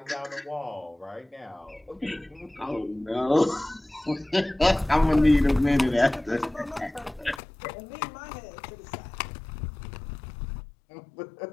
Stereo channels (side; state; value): right; drops out; at 7.4 s